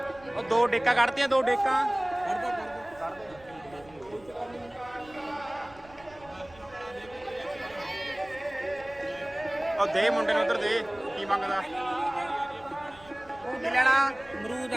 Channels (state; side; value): noise; right; rumble, 24 dB below the sound